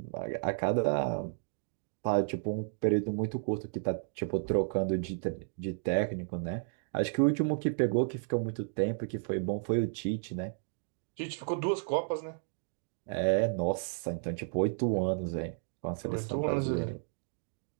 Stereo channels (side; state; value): left; silent; digital silence